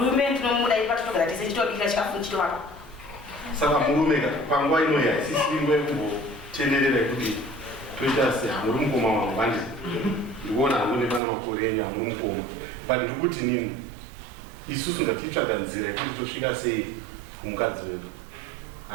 ndinomuda ipatogara tese chitobikira chikafu chitovaka saka murume panguva inoyi haisisingwe kumbotenderera kuti toita sehamuri mukoma wangu handi ndikuona hamune pana makore enyu hamuri mukoma but ndikuti nini isusu ngatitsvaga nzira yekuti tosvika sei kumukadzi wedu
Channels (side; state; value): left; drops out; at 11.2 s